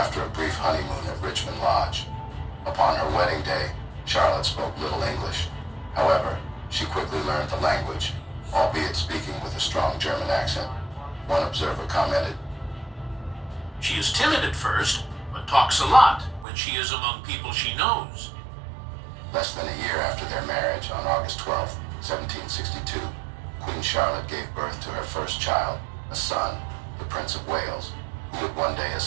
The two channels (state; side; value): drops out; left; at 16.4 s